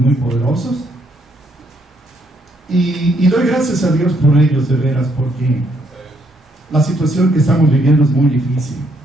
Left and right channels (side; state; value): both; normal; correlation 0.72